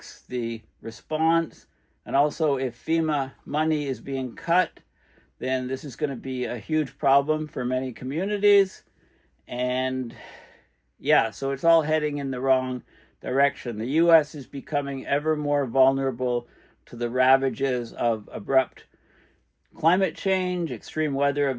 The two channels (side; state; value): both; identical; correlation 1.00